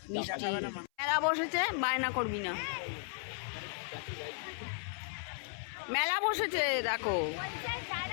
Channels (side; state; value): right; silent; 54 dB below the other